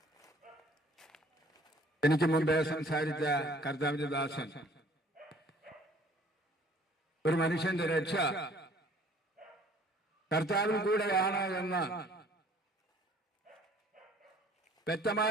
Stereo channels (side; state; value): both; normal; correlation 0.55